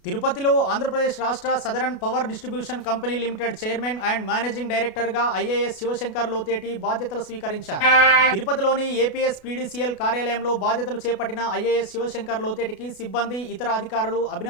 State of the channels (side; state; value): right; late; 33 ms